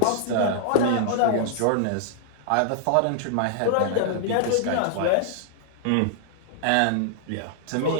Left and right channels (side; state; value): both; different; correlation -0.01